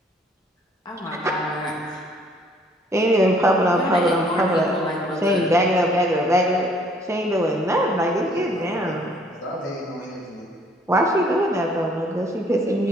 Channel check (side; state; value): both; normal; correlation 0.61